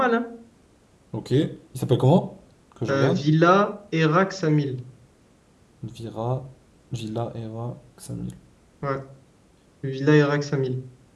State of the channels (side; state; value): both; identical; correlation 1.00